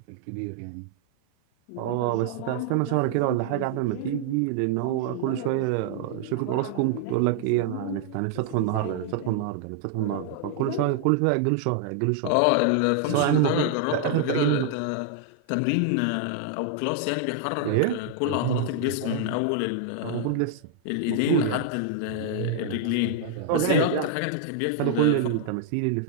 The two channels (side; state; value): both; different; correlation -0.01